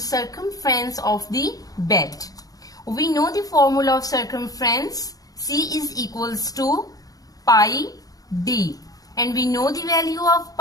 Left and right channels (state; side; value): late; right; 0.18 ms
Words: of the bed. We know the formula of circumference. C is equals to pi d, and we know the value of